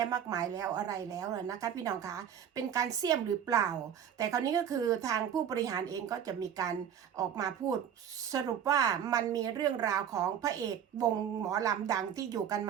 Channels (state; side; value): quieter; left; 8.9 dB